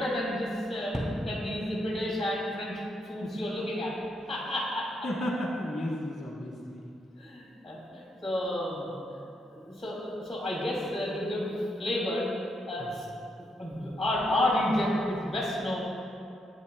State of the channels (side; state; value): both; normal; correlation 0.78